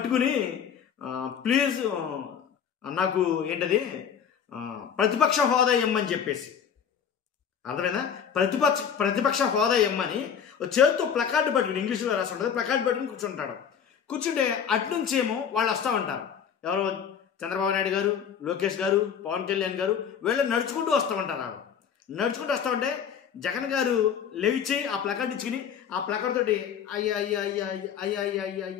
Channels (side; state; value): right; quieter; 7.8 dB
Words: ప్లీజ్ నాకు ఏంటది ప్రతిపక్ష హోదా ఇమ్మని చెప్పేసి, అర్థమైనా, ప్రతిపక్ష హోదా ఇమ్మని చేతితో ప్లకార్డు పట్టుకుని, ఇంగ్లీష్లో రాసి ఉంటుంది, ప్లకార్డు పట్టుకుని కూర్చుంటాడు. కూర్చుంటే అట్నుంచి ఏమో వాళ్ళు వస్తూ ఉంటారు. ఎవరు? చంద్రబాబు నాయుడు గారు, లోకేష్ గారు, పవన్ కళ్యాణ్ గారు వీళ్ళు నడుచుకుంటూ వస్తూ ఉంటారు. నడుచుకుంటూ వస్తూ ఉంటే జగన్ గారు లేచి ఆ ప్లకార్డు ఇచ్చుకుని ఆ ప్లకార్డ్ తోటి అయ్యా అయ్యా అయ్యా అయ్యా అయ్యా అయ్యా